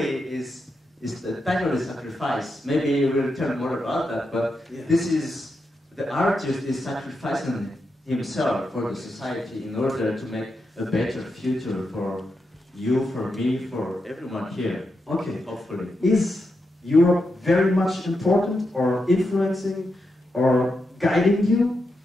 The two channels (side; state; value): both; normal; correlation 0.86